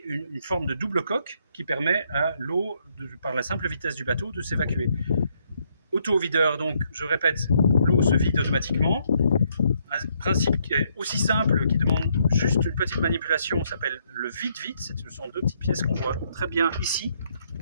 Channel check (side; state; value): both; inverted; correlation -0.72